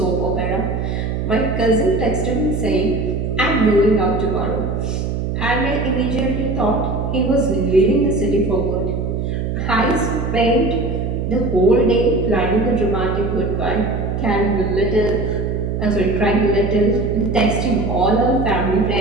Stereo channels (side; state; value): right; noise; hum, 2 dB below the sound